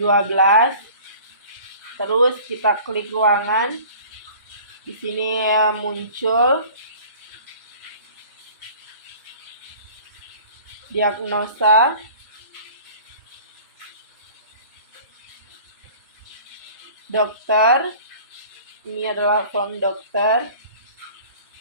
Terus kita klik ruangan, di sini muncul diagnosa, dokter, ini adalah form dokter,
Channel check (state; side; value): inverted; both; correlation -0.45